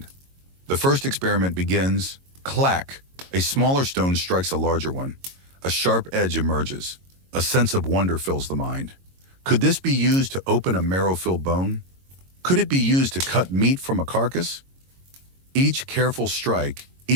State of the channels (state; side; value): late; left; 22 ms